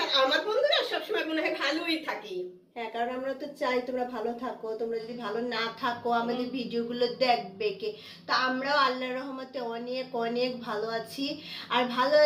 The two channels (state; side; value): identical; both; correlation 1.00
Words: আমার বন্ধুরা সবসময় মনে হয় ভালোই থাকি। হ্যাঁ, কারণ আমরা তো চাই তোমরা ভালো থাকো। তোমরা যদি ভালো না থাকো আমাদের ভিডিওগুলো দেখবে কে? তো আমরাও আল্লাহর রহমতে অনেক অনেক ভালো আছি। আর ভালো